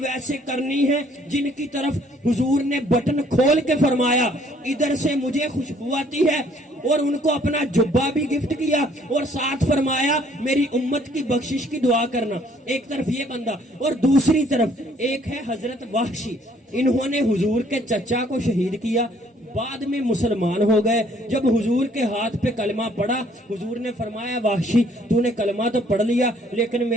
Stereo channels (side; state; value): both; normal; correlation 0.62